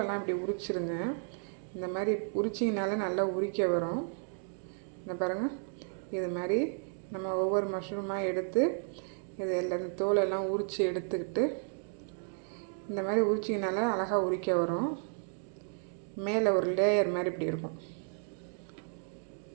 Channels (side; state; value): left; silent; 56 dB below the other